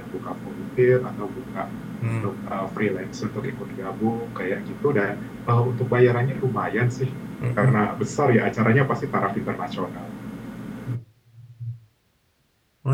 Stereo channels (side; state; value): both; identical; correlation 1.00